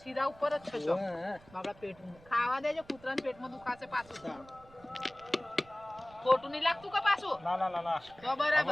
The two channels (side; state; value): right; noise; rumble, 25 dB below the sound